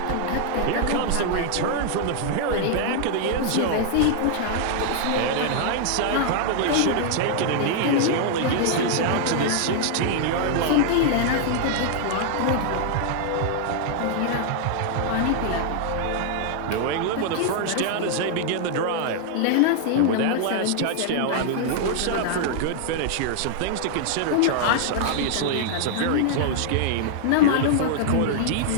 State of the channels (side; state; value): both; different; correlation -0.01